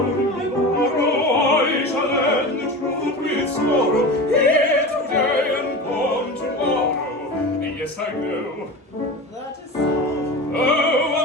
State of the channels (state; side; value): normal; both; correlation 0.29